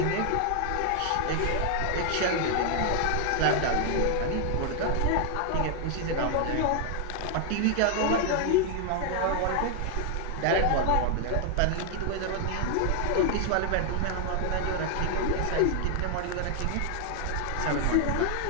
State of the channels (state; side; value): different; both; correlation 0.00